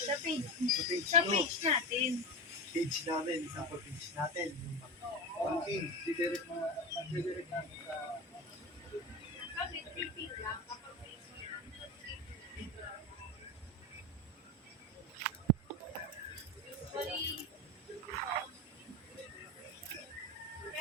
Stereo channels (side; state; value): both; normal; correlation 0.21